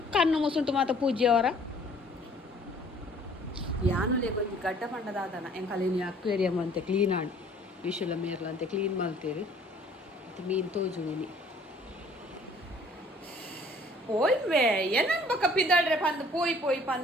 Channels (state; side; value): normal; both; correlation 0.56